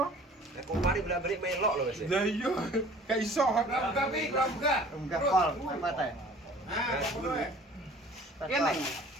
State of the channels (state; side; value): normal; both; correlation 0.49